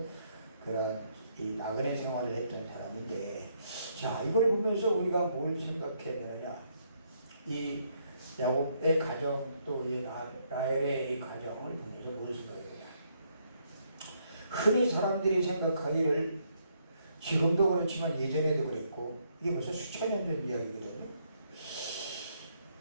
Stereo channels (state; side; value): inverted; both; correlation -0.73